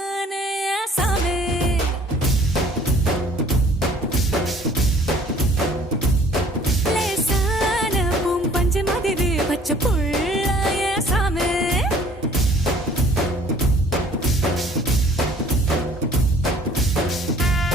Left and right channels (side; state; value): both; normal; correlation 0.55